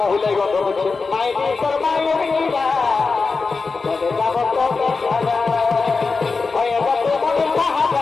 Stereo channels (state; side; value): quieter; right; 4.4 dB